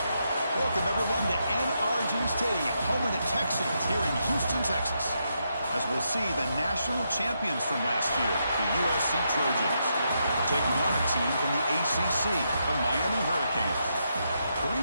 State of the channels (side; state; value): both; inverted; correlation -0.81